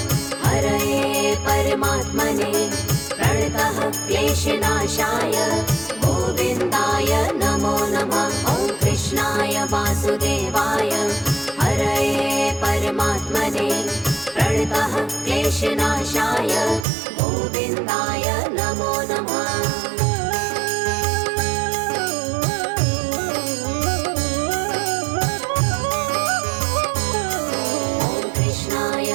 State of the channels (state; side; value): drops out; left; at 16.9 s